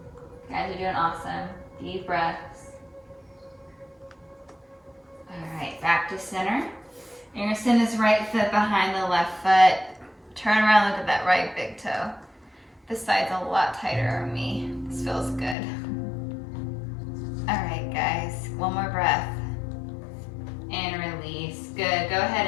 Guys are doing awesome. Deep breaths. All right, back to center. You're gonna send this right foot behind the left foot. Turn around, look at that right big toe. This side's a lot tighter on me. This feels good. All right, guys, one more breath. And release. Good, go ahead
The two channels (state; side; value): drops out; right; at 15.6 s